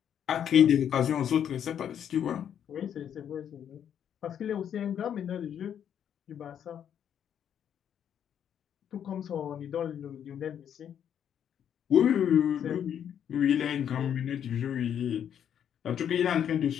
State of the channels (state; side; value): quieter; right; 9.1 dB